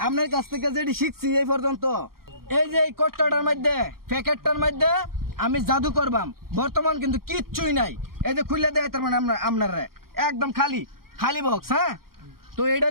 আপনার কাছ থেকে যেটি শিখছি এই পর্যন্ত, এই যে এই কট্টাটার মধ্যে, প্যাকেটটার মধ্যে আমি জাদু করবাম। বর্তমান কিন্তু কিচ্ছুই নাই। এই যে খুলে দেয় তার মানে আপনারা একদম খালি খালি বক্স। হ্যাঁ, তো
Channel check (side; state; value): left; late; 0.93 ms